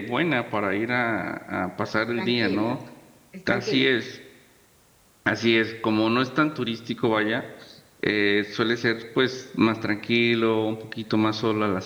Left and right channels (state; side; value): identical; both; correlation 1.00